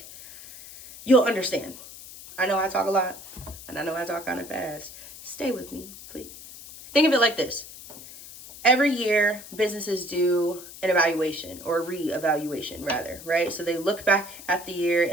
you'll understand. I know I talk a lot, and I know I talk kind of fast. Stay with me, please. Think of it like this. Every year, businesses do an evaluation, or re-evaluation rather, right? So they look back at the year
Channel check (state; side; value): noise; left; hiss, 15 dB below the sound